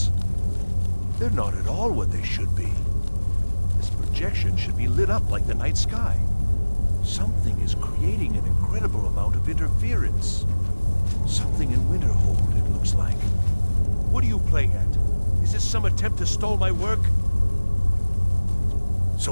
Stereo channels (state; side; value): inverted; both; correlation -1.00